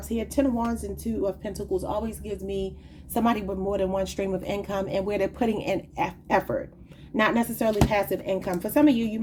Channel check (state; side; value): identical; both; correlation 1.00